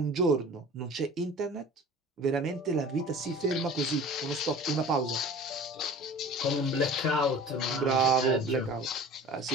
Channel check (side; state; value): both; normal; correlation 0.42